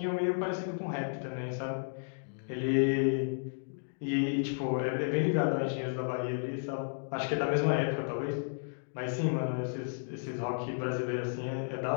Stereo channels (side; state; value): right; silent; digital silence